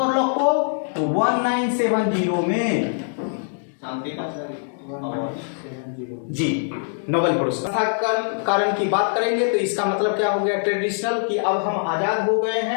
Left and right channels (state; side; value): silent; right; digital silence